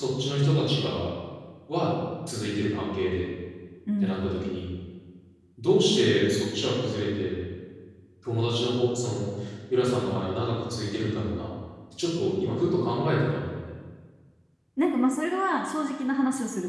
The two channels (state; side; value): identical; both; correlation 1.00